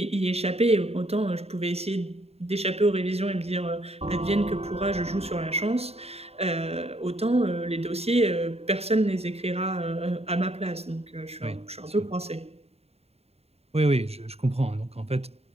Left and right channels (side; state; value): left; late; 0.30 ms